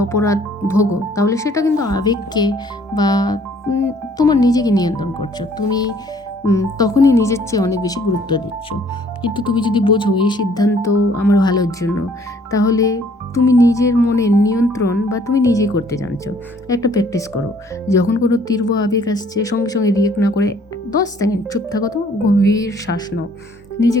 অপরাধ ভোগো, তাহলে সেটা কিন্তু আবেগকে বা তোমার নিজেকে নিয়ন্ত্রণ করছো। তুমি তখনই নিজের চেয়ে অনেক বেশি গুরুত্ব দিচ্ছ। কিন্তু তুমি যদি বোঝো এই সিদ্ধান্ত আমার ভালোর জন্য, তাহলে তুমি নিজের মনের নিয়ন্ত্রণ বা তুমি নিজেই করতে জানছো। একটা প্র্যাকটিস করো, যখন কোনো তীব্র আবেগ আসছে সঙ্গে সঙ্গে রিয়েক্ট না করে 10 সেকেন্ড চুপ থাকো, তো গভীর শ্বাস নাও,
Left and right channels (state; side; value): normal; both; correlation 0.59